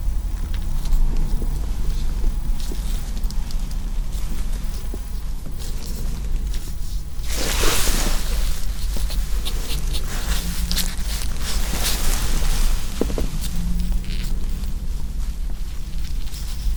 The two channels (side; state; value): both; identical; correlation 1.00